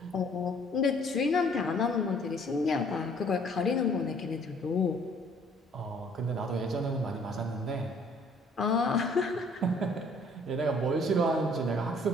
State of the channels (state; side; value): normal; both; correlation 0.59